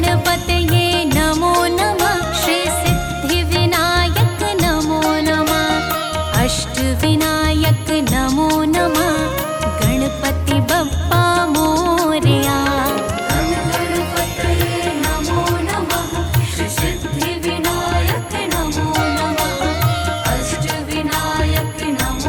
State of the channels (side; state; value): both; identical; correlation 1.00